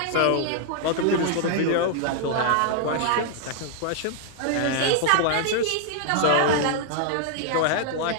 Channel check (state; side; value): different; both; correlation 0.00